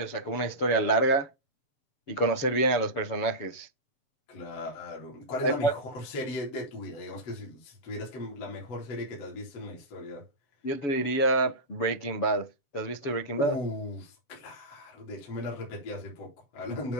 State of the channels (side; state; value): right; late; 7.0 ms